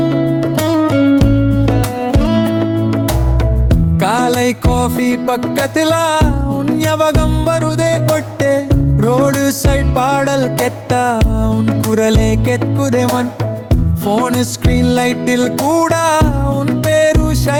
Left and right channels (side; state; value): both; identical; correlation 1.00